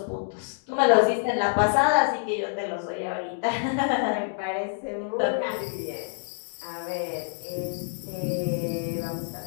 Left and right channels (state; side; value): silent; right; digital silence